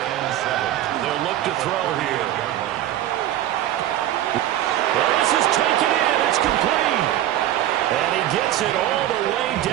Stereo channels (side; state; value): left; quieter; 12.9 dB